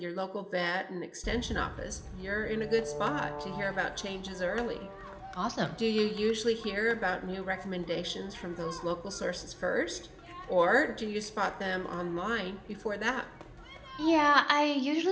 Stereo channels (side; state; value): both; identical; correlation 1.00